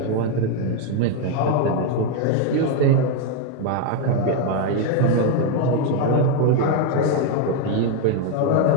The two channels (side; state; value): both; different; correlation 0.01